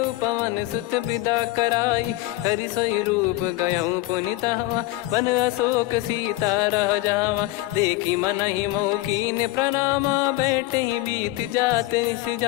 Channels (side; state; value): right; quieter; 18.2 dB